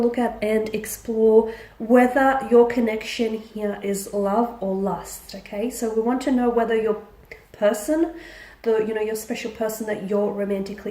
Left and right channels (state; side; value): identical; both; correlation 1.00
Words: at and explore whether your connection here is love or lust, okay? So we want to know whether your person, your special person that you're